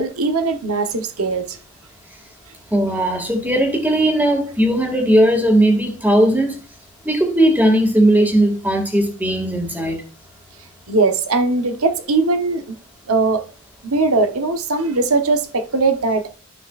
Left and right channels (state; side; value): normal; both; correlation 0.51